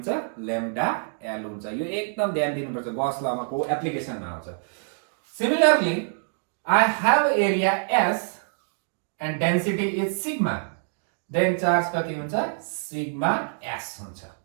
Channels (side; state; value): left; silent; digital silence